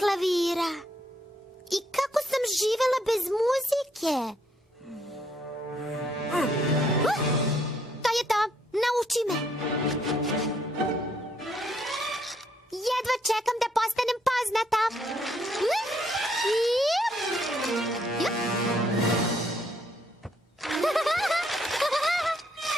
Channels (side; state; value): both; normal; correlation 0.71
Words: klavira? I kako sam živela bez muzike? To je to, nauči me. Jedva čekam da postanem poznata.